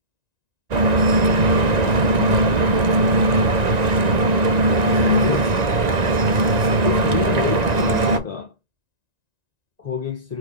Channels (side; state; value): left; late; 1.9 ms